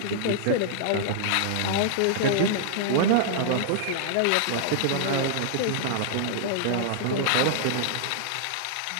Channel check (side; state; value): both; different; correlation -0.01